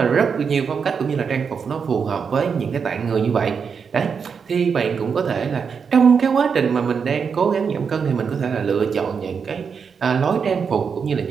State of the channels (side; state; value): left; quieter; 6.2 dB